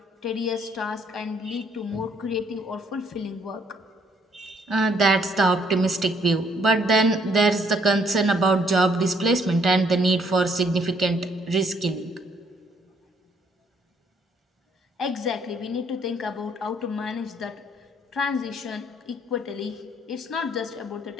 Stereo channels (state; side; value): normal; both; correlation 0.67